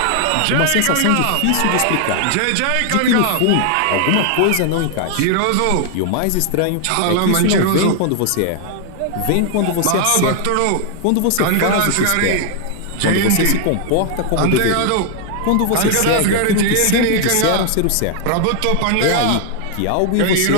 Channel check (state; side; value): different; both; correlation 0.00